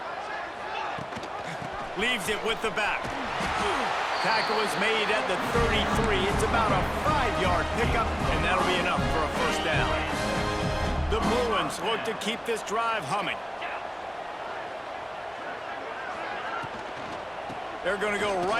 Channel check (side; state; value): both; identical; correlation 1.00